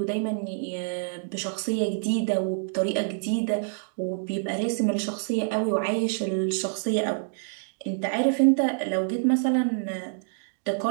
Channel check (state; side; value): silent; left; digital silence